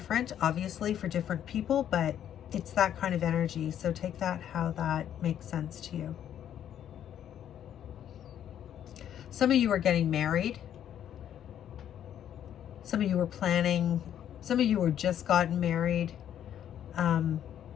obviously, for different people, but it's that kind of energy. So take that how that makes sense to you. Some of you are getting married. Some of you are planning. Some of you are just gotten married. And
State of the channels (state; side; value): quieter; right; 10.2 dB